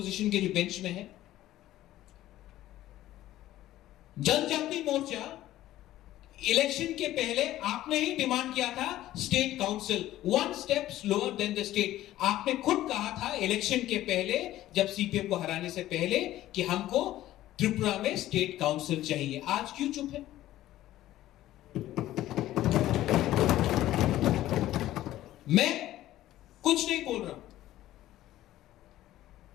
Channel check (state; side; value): quieter; right; 14.4 dB